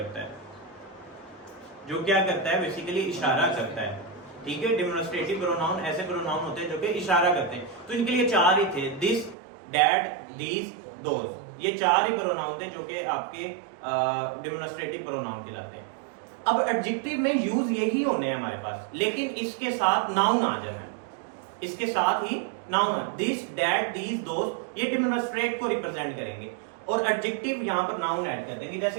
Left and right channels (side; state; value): left; drops out; at 9.3 s